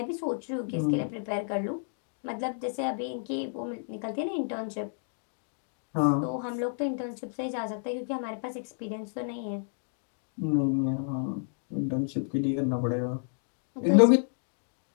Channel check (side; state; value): right; silent; digital silence